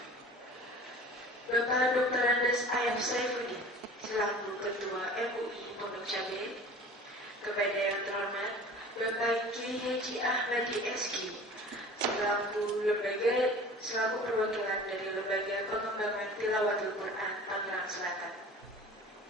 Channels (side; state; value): both; normal; correlation 0.42